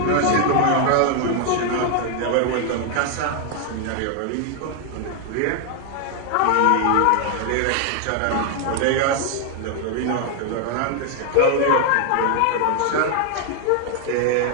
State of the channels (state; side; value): different; both; correlation 0.00